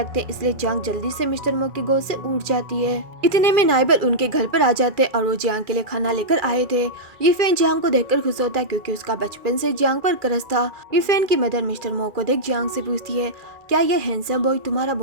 हैं इसलिए जियांग जल्दी से मिस्टर मो की गोद से उठ जाती है। इतने में नाइबर उनके घर पर आ जाते हैं और वो जियांग के लिए खाना लेकर आए थे। ये फैन जियांग को देखकर खुश होता है क्योंकि उसका बचपन से जियांग पर क्रश था। ये फैन की मदर मिस्टर मो को देख जियांग से पूछती है क्या ये हैंडसम बॉय तुम्हारा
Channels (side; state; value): left; late; 2.4 ms